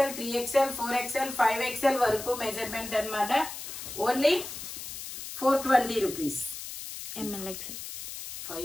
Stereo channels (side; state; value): left; noise; hiss, 9 dB below the sound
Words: 3XL, 4XL, 5XL వరకు మెజర్మెంట్ అన్నమాట. Only 420 rupees. MLXL.